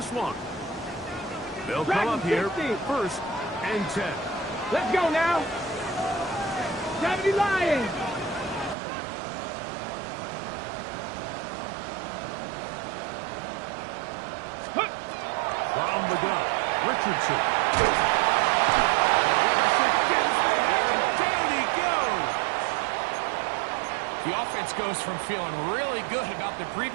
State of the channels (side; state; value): left; drops out; at 8.8 s